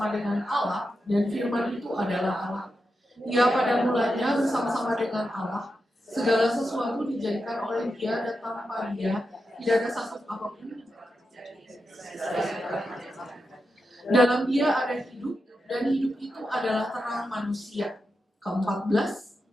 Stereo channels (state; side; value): normal; both; correlation 0.88